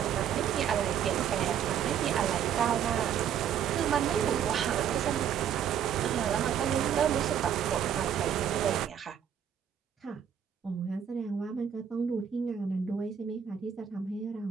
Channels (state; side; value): quieter; left; 8.7 dB